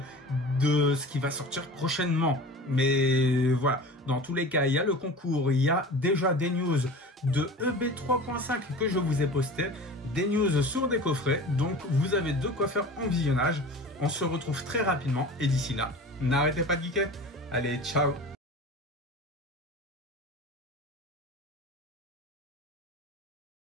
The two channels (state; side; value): normal; both; correlation 0.36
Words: de ce qui va sortir prochainement. Mais voilà, dans tous les cas, il y a le concours, il y a déjà des news de EB3.5 que je vous ai posté, des news sur des coffrets, donc vous avez de quoi faire en visionnage. On se retrouve très rapidement, et d'ici là, n'arrêtez pas de geeker. Allez, ciao!